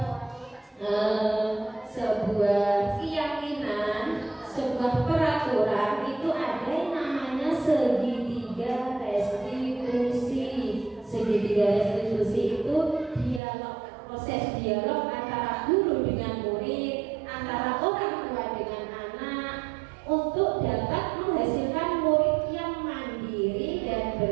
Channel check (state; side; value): drops out; left; at 13.4 s